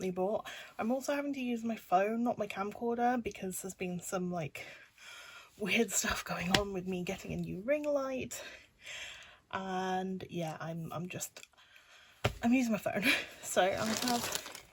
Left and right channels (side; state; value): both; identical; correlation 1.00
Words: bought. I'm also having to use my phone, not my camcorder, because there's been some like weird stuff going on with me getting a new ring light. And yeah, I'm using my phone. So I have